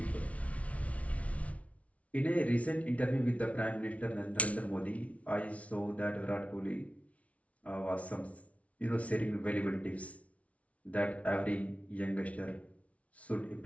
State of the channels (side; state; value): right; late; 0.065 ms